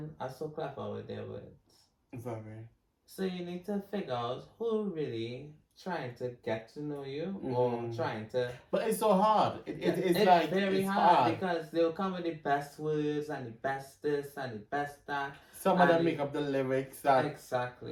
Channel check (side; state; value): both; identical; correlation 1.00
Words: are so clever with their words. Very. So you need to figure out who really trying to get to know you or trying to... But it's so hard. It's like very hard because they'll come with the best words and the best this and the best that. Some of them make up the lyrics that...